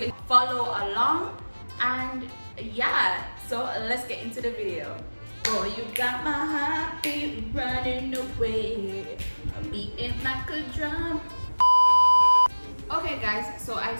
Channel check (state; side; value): inverted; both; correlation -1.00